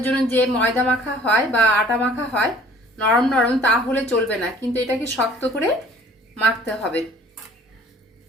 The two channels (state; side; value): normal; both; correlation 0.52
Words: জন্য যে ময়দা মাখা হয় বা আটা মাখা হয় নরম নরম, তাহলে চলবে না, কিন্তু এটাকে শক্ত করে মাখতে হবে।